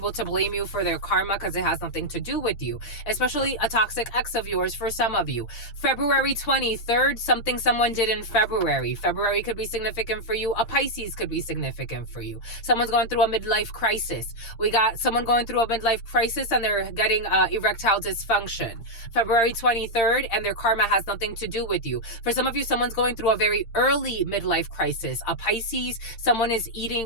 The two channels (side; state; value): right; late; 8.8 ms